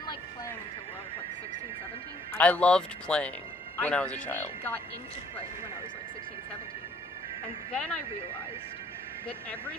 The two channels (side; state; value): both; normal; correlation 0.60